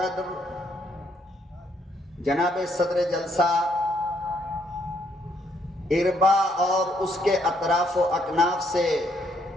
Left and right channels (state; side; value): normal; both; correlation 0.71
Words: جناب صدر جلسہ اربا اور اس کے اطراف و اکناف سے